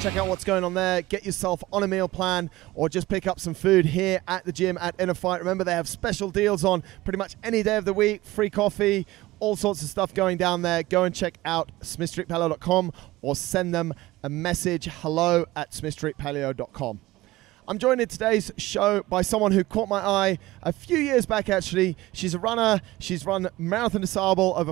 out what's going on there. Get yourself on a meal plan or just pick up some food here at the gym at InnerFight. Remember, they have special deals on pretty much any day of the week, free coffee, all sorts of stuff going down there. Go and check out smithstreetpaleo.com or send them a message, hello@smithstreetpaleo.com. I'm joined in today's show by someone who caught my eye a few years back, actually. She's a runner. She's run Marathon Des Sables over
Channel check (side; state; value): left; quieter; 18.3 dB